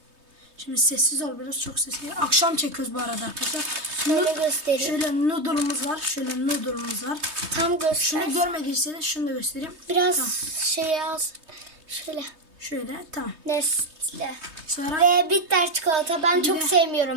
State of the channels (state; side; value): late; left; 3.2 ms